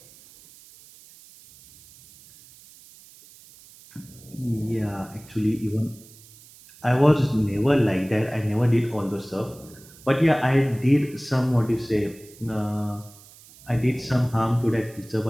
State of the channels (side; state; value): right; noise; hiss, 23 dB below the sound